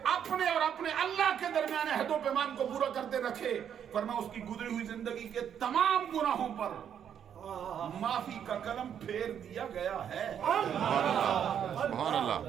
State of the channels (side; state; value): left; quieter; 8.8 dB